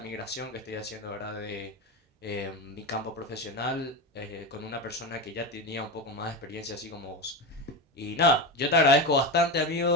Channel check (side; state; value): both; normal; correlation 0.18